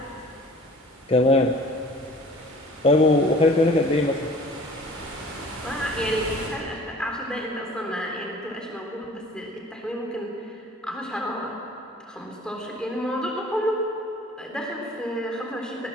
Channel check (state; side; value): normal; both; correlation 0.48